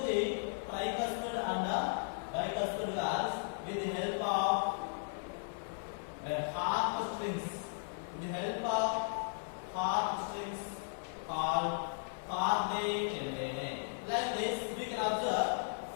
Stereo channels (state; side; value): silent; right; 54 dB below the other